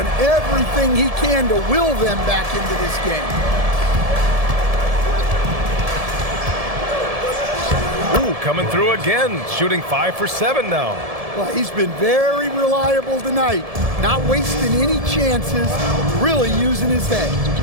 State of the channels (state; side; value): late; left; 1.7 ms